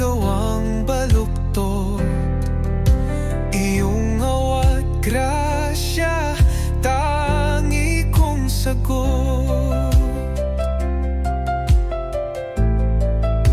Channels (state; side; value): identical; both; correlation 1.00